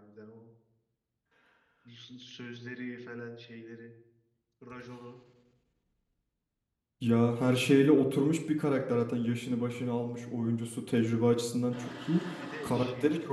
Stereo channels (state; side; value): identical; both; correlation 1.00